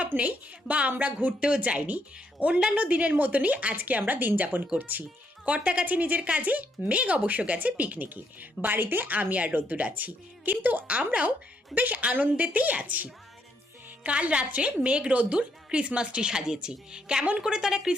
নেই বা আমরা ঘুরতেও যাইনি। অন্যান্য দিনের মতনই আজকে আমরা দিন যাপন করছি। কর্তা গেছে নিজের কাজে, মেঘ অবশ্য গেছে পিকনিকে। বাড়িতে আমি আর রোদ্দুর আছি, কিন্তু আমরাও বেশ আনন্দেতেই আছি। কাল রাত্রে মেঘ রোদ্দুর ক্রিসমাস ট্রি সাজিয়েছি। কেমন করে তারা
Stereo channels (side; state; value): both; normal; correlation 0.75